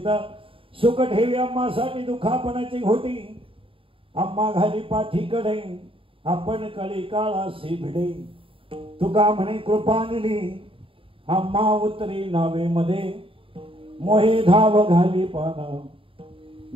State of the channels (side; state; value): left; late; 0.26 ms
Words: सुख ठेवी अम्मासाठी दुखापणाची घोटी अम्मा घाली पाठीकडे आपण कळी काळासी भिडे तुका म्हणे कृपानिली अम्मा उतरी नावे मध्ये मोहे धाव घाली पाना